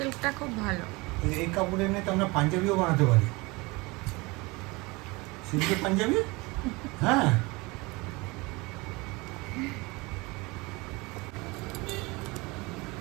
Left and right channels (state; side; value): quieter; left; 24.5 dB